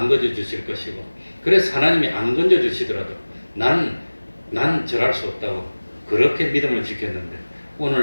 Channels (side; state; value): both; inverted; correlation -1.00